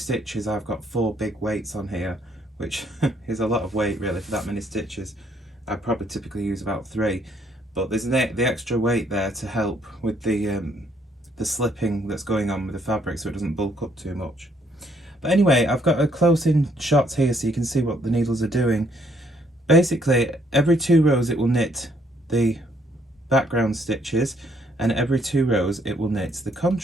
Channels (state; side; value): normal; both; correlation 0.68